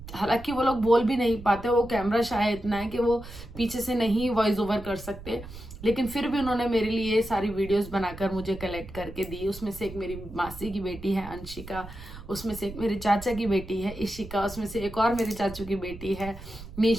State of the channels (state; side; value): noise; right; rumble, 14 dB below the sound